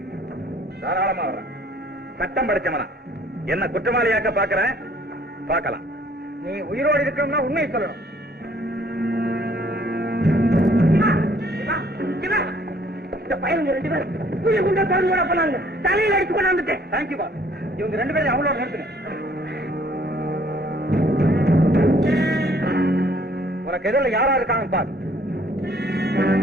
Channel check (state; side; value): normal; both; correlation 0.60